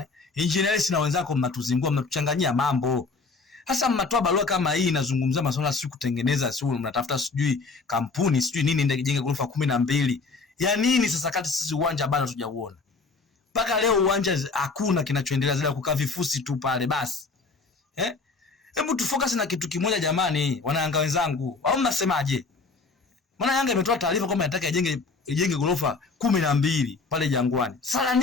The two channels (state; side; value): quieter; right; 4.2 dB